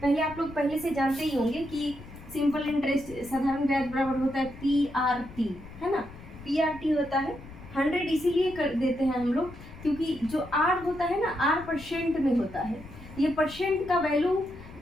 पहले आप लोग पहले से जानते ही होंगे कि सिंपल इंटरेस्ट साधारण ब्याज बराबर होता है पीआरटी, है ना। पीआरटी होता है 100, इसीलिए कर देते हैं हम लोग क्योंकि जो आर होता है ना, आर परसेंट में होता है। ये परसेंट का वैल्यू,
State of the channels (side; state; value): left; noise; rumble, 17 dB below the sound